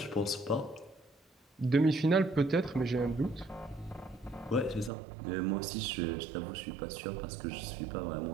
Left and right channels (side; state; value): left; drops out; at 4.9 s